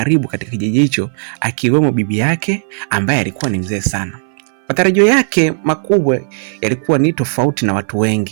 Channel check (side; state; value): left; silent; 60 dB below the other